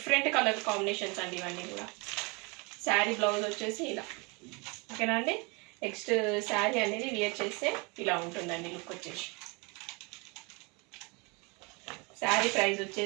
కలర్ కాంబినేషన్స్ అండి ఇవన్నీ కూడా. శారీ బ్లౌజ్ వచ్చేసి ఇలా. ఓకేనా అండి? నెక్స్ట్ శారీ అనేది వేర్ చేస్తే ఇలా ఉంటుందండి లుక్ వచ్చేసి. శారీ ప్రైస్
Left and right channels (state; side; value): quieter; left; 29.3 dB